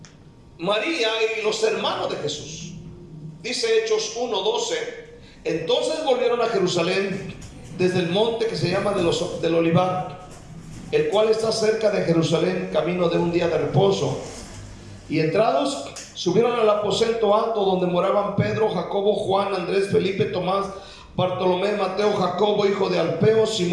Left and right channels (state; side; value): identical; both; correlation 1.00